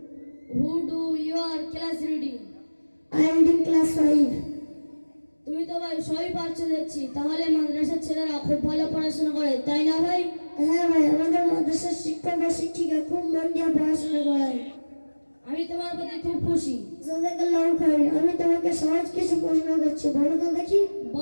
Who do your class reading? I am in class 5. তুমি তো ভাই সবই পারছো দেখছি, তাহলে মাদ্রাসার ছেলেরা খুব ভালো পড়াশোনা করে, তাই না ভাই? হ্যাঁ ভাই, আমাদের মাদ্রাসার শিক্ষক ও শিক্ষিকা খুব মন দিয়ে পড়াশোনা করায়। আমি তোমার প্রতি খুব খুশি। জাযাকাল্লাহু খাইর। আমি তোমাকে সহজ কিছু প্রশ্ন করছি, বলো তো দেখি।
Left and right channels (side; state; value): both; inverted; correlation -1.00